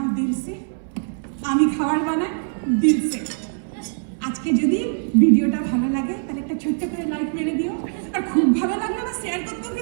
দিলসে, আমি খাবার বানাই দিলসে। আজকে যদি ভিডিওটা ভালো লাগে তাহলে একটা ছোট্ট করে লাইক মেরে দিও, আর খুব ভালো লাগলে আবার শেয়ার করতেও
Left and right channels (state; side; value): silent; left; 62 dB below the other